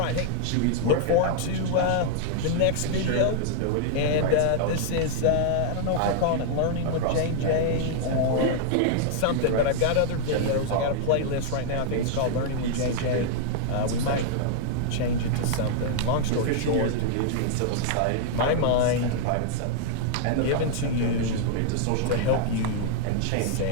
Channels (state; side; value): different; both; correlation -0.01